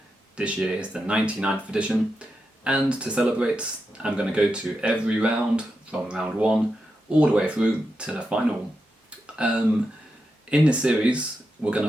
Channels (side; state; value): both; normal; correlation 0.87